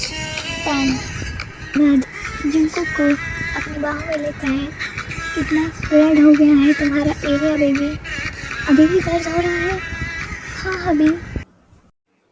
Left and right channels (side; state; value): both; identical; correlation 1.00